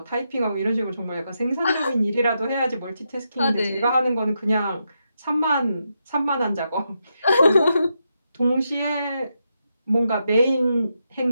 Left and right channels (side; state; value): both; inverted; correlation -0.84